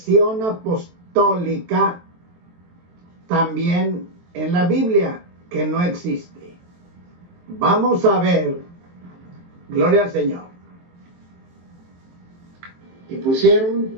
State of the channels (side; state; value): left; late; 23 ms